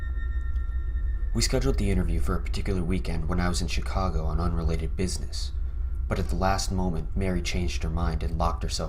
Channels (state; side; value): identical; both; correlation 1.00